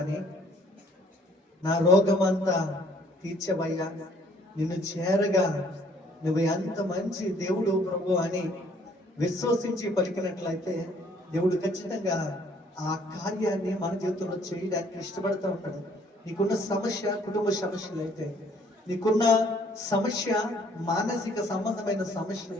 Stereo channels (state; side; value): normal; both; correlation 0.62